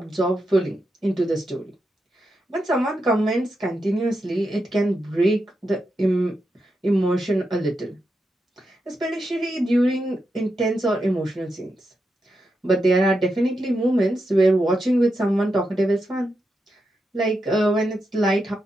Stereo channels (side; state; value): both; normal; correlation 0.86